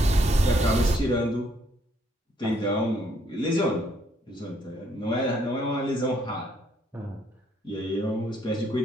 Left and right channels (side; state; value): both; normal; correlation 0.68